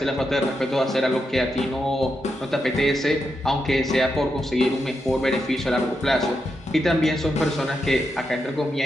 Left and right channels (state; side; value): normal; both; correlation 0.85